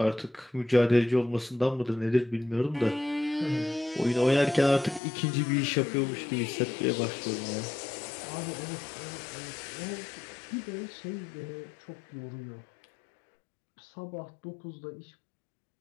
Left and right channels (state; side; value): drops out; right; at 5.0 s